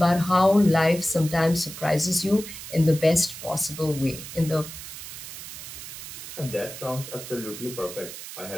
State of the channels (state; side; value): noise; right; hiss, 11 dB below the sound